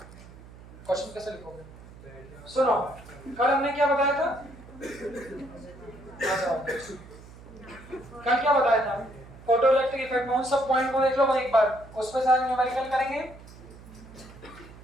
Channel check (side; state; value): right; noise; hum, 19 dB below the sound